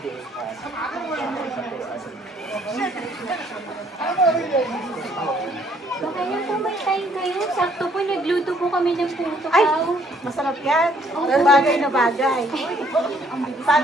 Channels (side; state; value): both; normal; correlation 0.65